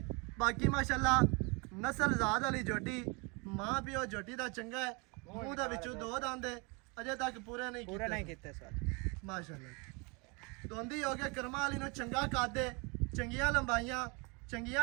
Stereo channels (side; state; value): left; quieter; 29.4 dB